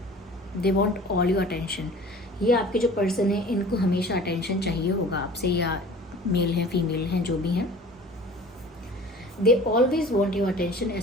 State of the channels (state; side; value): normal; both; correlation 0.44